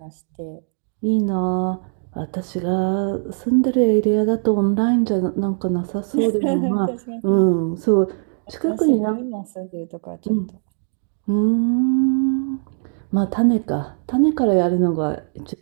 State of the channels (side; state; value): left; silent; 60 dB below the other